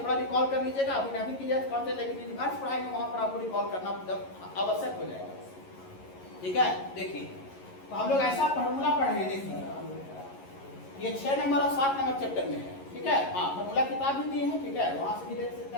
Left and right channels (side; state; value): right; late; 11 ms